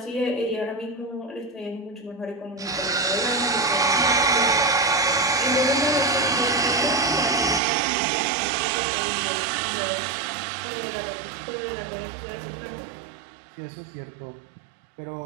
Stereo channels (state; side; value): drops out; left; at 7.6 s